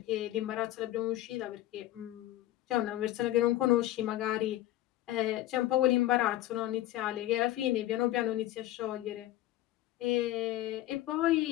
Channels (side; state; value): right; quieter; 14.8 dB